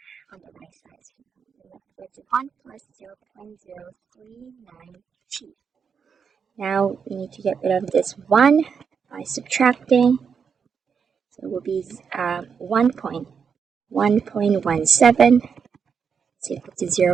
on the right side. So you're left with 1 plus 0.039t. Now we need to get rid of this 1 by subtracting. So it will be 1.17 is equal to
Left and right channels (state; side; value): quieter; left; 6.4 dB